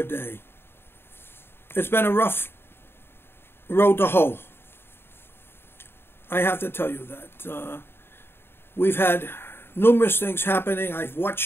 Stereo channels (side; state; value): right; late; 0.11 ms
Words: day. It's been a rough road to hoe. I have to tell you that we've had numerous things happening. I've